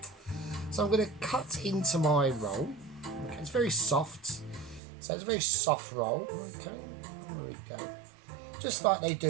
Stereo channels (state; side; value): drops out; left; at 4.8 s